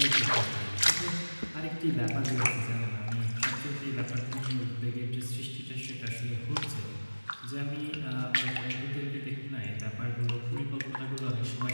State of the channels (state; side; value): inverted; both; correlation -1.00